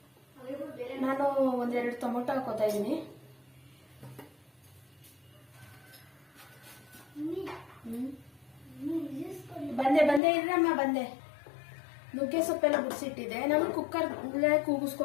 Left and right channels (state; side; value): drops out; right; at 10.2 s